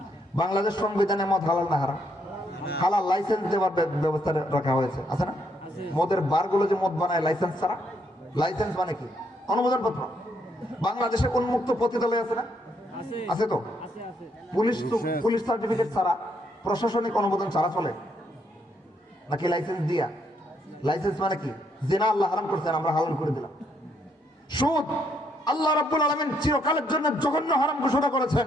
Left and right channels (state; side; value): normal; both; correlation 0.73